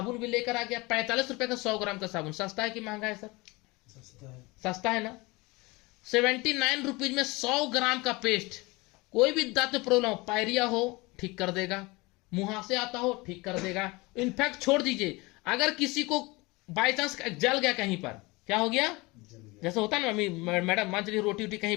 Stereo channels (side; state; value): right; quieter; 23.9 dB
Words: भी लेकर आ गया। 45 रुपए का 100 ग्राम का साबुन। सस्ता है कि महंगा है सर? सस्ता है ना। 79 रुपीज में 100 ग्राम का पेस्ट। कोई भी दांत में प्रॉब्लम हो, पायरिया हो ठीक कर देगा, मुहासे आता हो ठीक कर देगा। इनफैक्ट छोड़ दीजिए, अगर किसी को बाय चांस जल गया कहीं पर, क्या हो गया? जैसे होता है ना, मम्मी मैडम मान चलिए रोटी वोटी